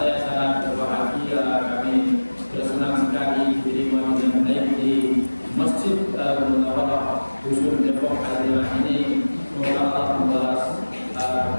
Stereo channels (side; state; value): both; inverted; correlation -1.00